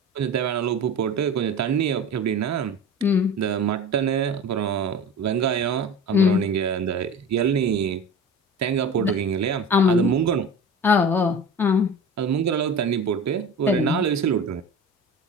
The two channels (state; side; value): normal; both; correlation 0.33